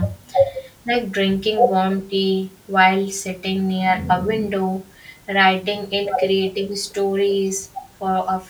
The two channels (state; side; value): identical; both; correlation 1.00